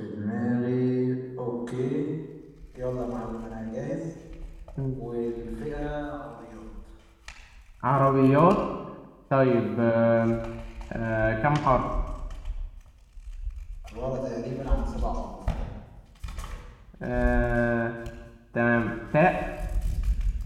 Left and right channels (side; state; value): both; identical; correlation 1.00